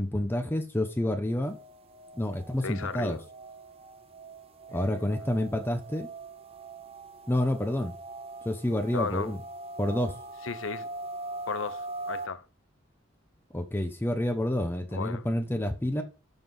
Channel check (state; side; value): normal; both; correlation 0.77